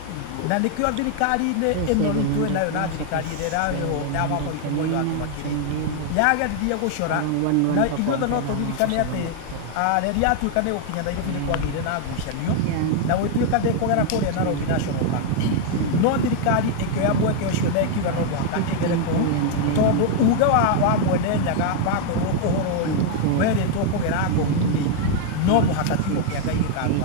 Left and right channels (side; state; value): both; different; correlation 0.00